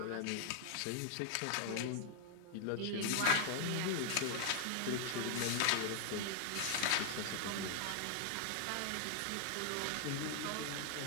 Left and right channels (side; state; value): both; different; correlation 0.00